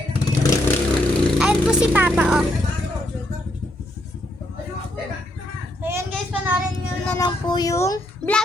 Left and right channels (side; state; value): both; normal; correlation 0.76